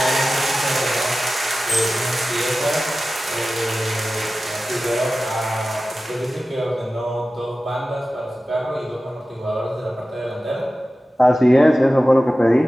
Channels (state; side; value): normal; both; correlation 0.95